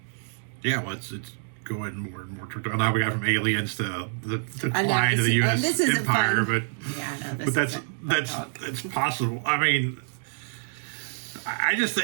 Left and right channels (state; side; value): silent; left; digital silence